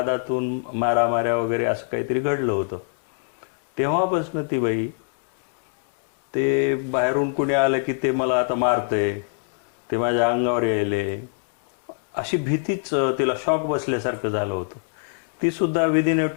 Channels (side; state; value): right; silent; 63 dB below the other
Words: मारामाऱ्या वगैरे असं काहीतरी घडलं होतं. तेव्हापासून ती बाई, ते बाहेरून कुणी आलं की ते मला आता मारतंय, ते माझ्या अंगावर यायले, अशी भीतीच तिला शॉक बसल्यासारखं झालं होतं. ती सुद्धा विदिन